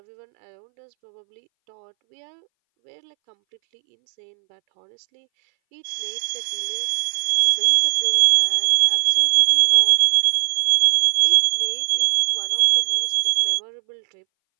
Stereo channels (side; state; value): left; silent; 62 dB below the other